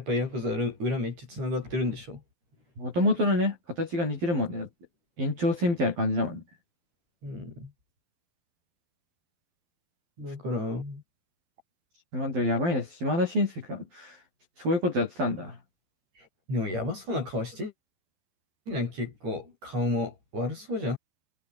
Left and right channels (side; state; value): left; late; 12 ms